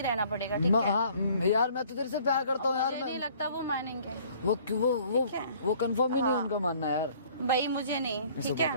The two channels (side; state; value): both; inverted; correlation -0.55